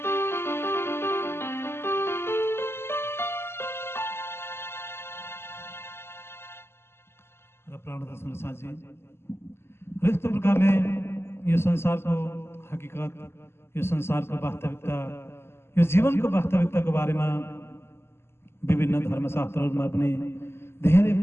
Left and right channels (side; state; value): right; late; 0.12 ms